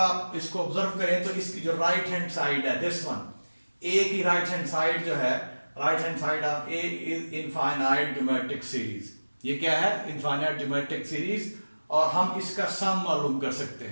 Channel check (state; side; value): inverted; both; correlation -1.00